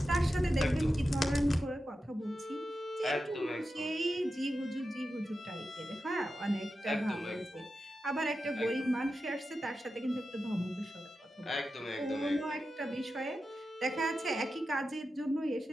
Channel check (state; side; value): normal; both; correlation 0.91